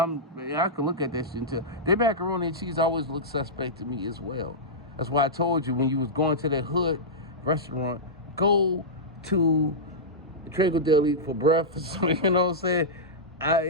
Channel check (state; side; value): normal; both; correlation -0.13